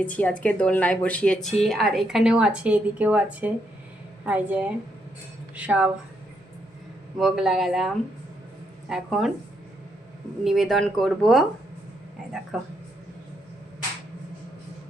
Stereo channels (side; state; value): both; normal; correlation 0.77